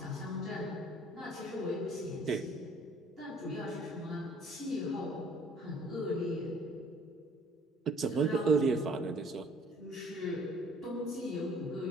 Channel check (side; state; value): both; normal; correlation 0.56